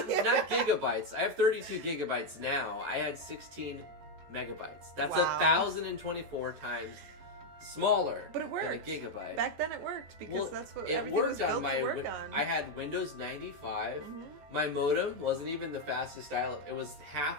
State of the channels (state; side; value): late; left; 14 ms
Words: gigabytes. I have 32 gigabytes now. I had 16 megabytes. That's Wow. 1,024 times smaller But it worked. than a gigabyte. Back then it worked because that's what it everything was worked on built my to work on. I had Windows 95. Mhm. My modem wasn't even the fastest dial-up. It was